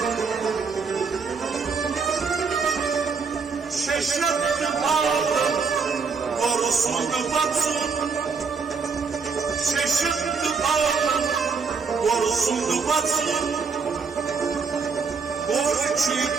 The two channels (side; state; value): left; quieter; 5.3 dB